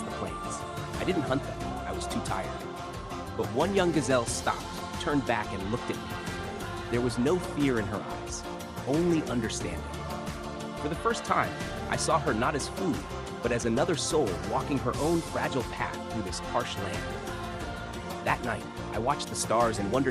the plains. I didn't hunt them, I was too tired. But one young gazelle stopped, turned back, and looked at me. There was no fear in her eyes, only understanding. For the first time, I saw her not as food, but as another soul walking her own fragile path through this harsh land. That night, I watched the stars and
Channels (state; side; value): identical; both; correlation 1.00